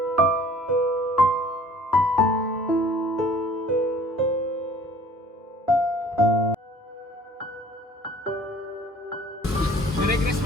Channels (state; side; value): normal; both; correlation 0.52